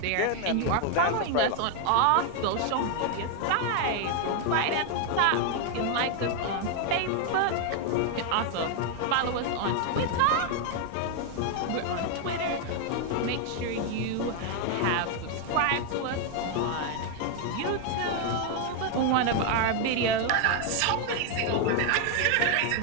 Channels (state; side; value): different; both; correlation 0.01